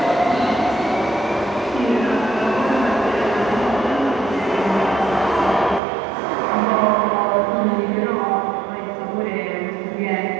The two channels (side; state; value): left; drops out; at 5.8 s